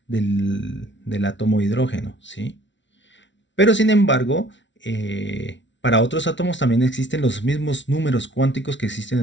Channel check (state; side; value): late; right; 0.54 ms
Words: del átomo de hidrógeno, ¿sí? Pero sin embargo, para otros átomos también existen los mismos números cuánticos que